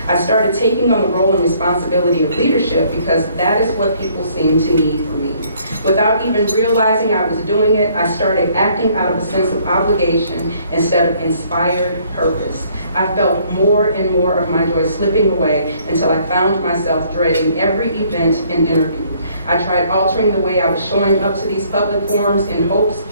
I started taking on the role and responsibility of leadership because that is what people seemed to need from me. Without even realizing I was doing it, I started acting out of a sense of obligation instead of inspired purpose. I felt more and more of my joy slipping away until I found myself dreading every event and interview. I tried altering the way I was showing up to these public forums in hopes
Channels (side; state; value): both; inverted; correlation -0.63